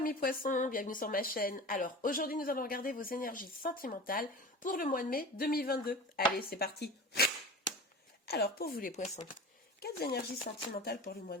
poissons, bienvenue sur ma chaîne. Alors aujourd'hui nous allons regarder vos énergies sentimentales pour le mois de mai 2022. Allez, c'est parti. Alors pour vous les poissons, quelles énergies sentimentales pour le mois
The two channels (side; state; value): both; normal; correlation 0.34